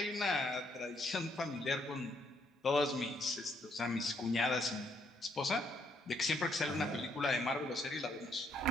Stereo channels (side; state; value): both; normal; correlation 0.71